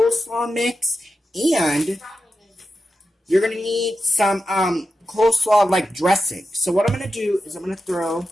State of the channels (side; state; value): both; normal; correlation 0.90